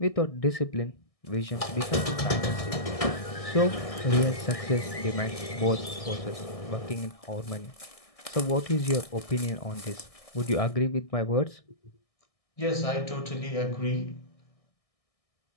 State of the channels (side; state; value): right; late; 1.6 ms